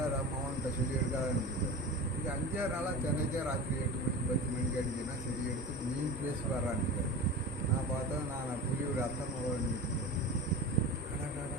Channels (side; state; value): both; normal; correlation 0.32